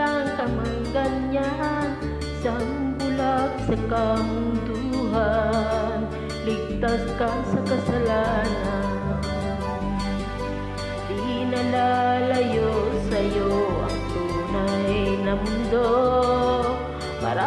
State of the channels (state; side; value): identical; both; correlation 1.00